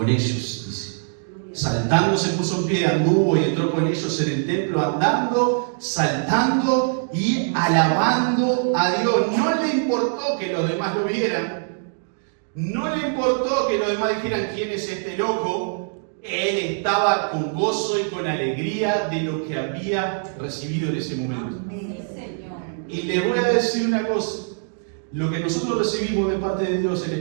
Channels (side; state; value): left; silent; digital silence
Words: ellos, dice. Saltando se puso en pie, anduvo y entró con ellos en el templo, andando, saltando y alabando a Dios. No le importó que los demás lo vieran, no le importó que los demás dijeran quién es este loco. Él estaba con gozo y con alegría de lo que había recibido en ese momento. Y les voy a decir una cosa, lo que nosotros recibimos de parte de Dios, el